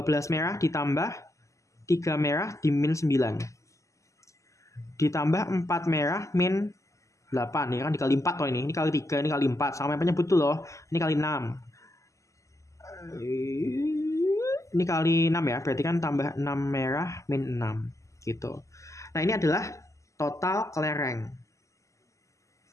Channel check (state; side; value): late; right; 0.15 ms